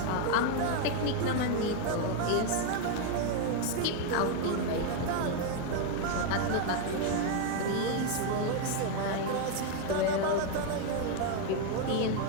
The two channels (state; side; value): different; both; correlation 0.01